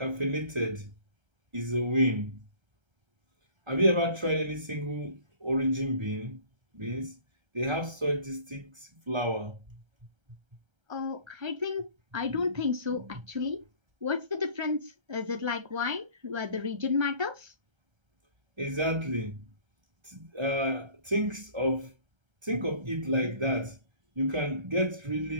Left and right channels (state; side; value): late; left; 1.3 ms